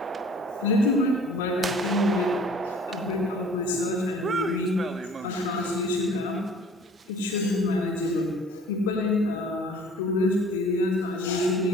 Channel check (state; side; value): normal; both; correlation 0.50